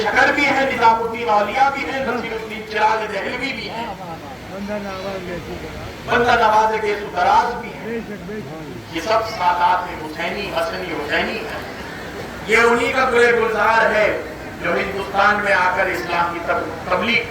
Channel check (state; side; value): identical; both; correlation 1.00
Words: شکر بھی ہیں، نظام الدین اولیاء بھی ہیں، نصیر الدین چراغ دہلوی بھی ہیں، بندہ نواز گیسو دراز بھی ہیں۔ یہ سب سادات حسینی حسنی حسینی ہیں۔ یہ انہی کا گلے گلزار ہے جو ہندوستان میں آ کر اسلام کی تبلیغ